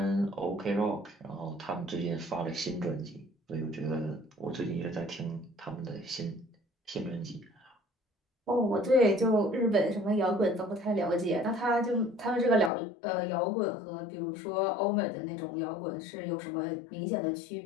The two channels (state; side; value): drops out; right; at 12.7 s